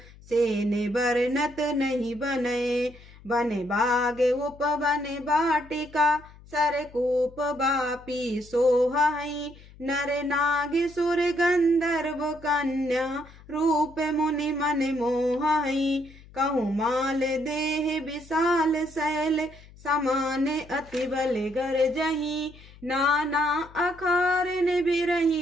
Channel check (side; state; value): left; noise; hum, 22 dB below the sound